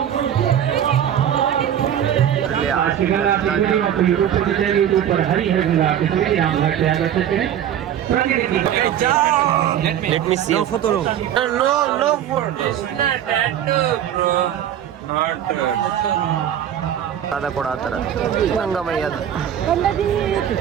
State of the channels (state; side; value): quieter; left; 10.2 dB